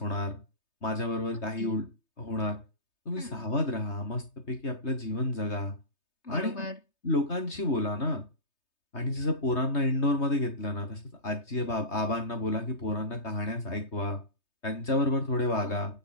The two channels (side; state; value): right; late; 3.2 ms